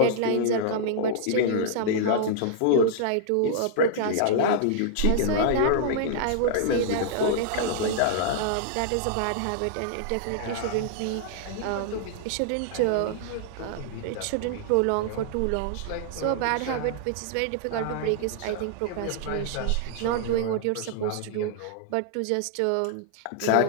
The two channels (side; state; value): both; different; correlation -0.01